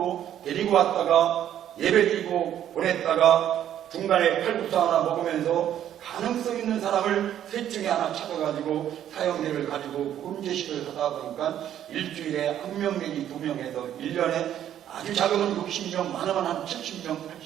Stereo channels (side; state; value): left; quieter; 10.8 dB